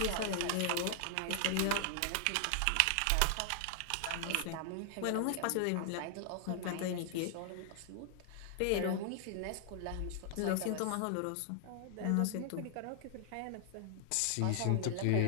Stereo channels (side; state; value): both; different; correlation 0.00